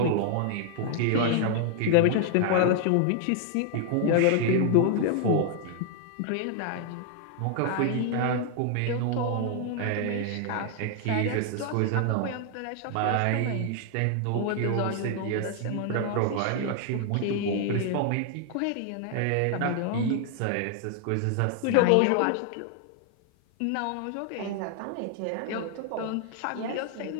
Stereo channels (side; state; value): both; different; correlation 0.00